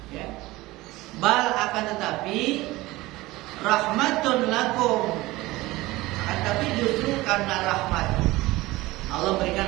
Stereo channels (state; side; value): quieter; left; 19.4 dB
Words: ya. Bal, akan tetapi rahmatun lakum, akan tapi justru karena rahmat Allah